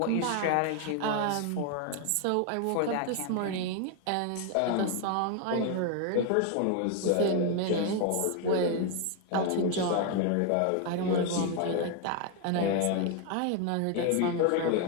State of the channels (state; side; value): different; both; correlation 0.01